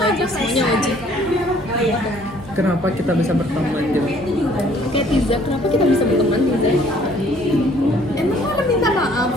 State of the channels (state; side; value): normal; both; correlation 0.59